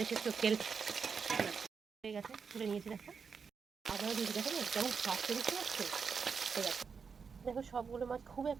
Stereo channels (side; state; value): left; quieter; 5.8 dB